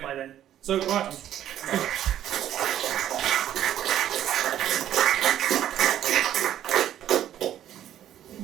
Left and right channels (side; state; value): left; quieter; 11.4 dB